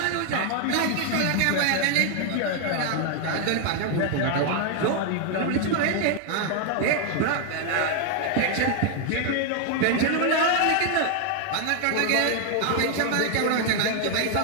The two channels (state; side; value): different; both; correlation 0.00